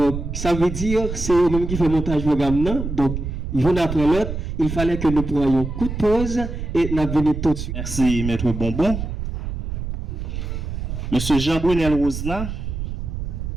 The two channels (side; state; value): right; noise; rumble, 5 dB below the sound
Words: ça veut dire c'est eux-mêmes qui fait montage programme, non? Donc une après l'autre, il fallait que nous prenions coup de pause et nous venions tout de suite. Merci, Maître Bonbon. Monsieur Jean-Brunel Rosna,